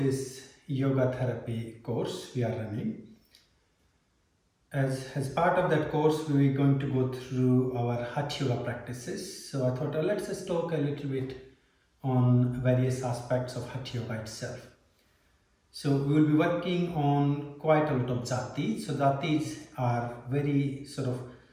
yoga therapy course we are running, as part of that course we're going to go through our Hatha Yoga practices. So I thought let's just talk a little bit on various aspects of Hatha Yoga itself. So we will be working on quite a lot of Jattis. So Jattis are very sort of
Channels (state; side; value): identical; both; correlation 1.00